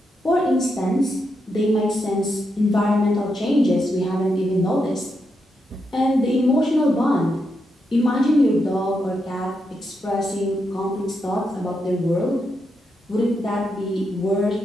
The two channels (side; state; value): both; normal; correlation 0.83